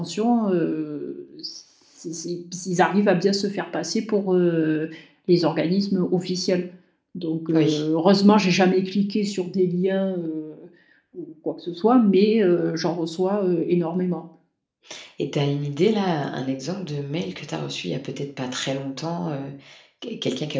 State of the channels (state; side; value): identical; both; correlation 1.00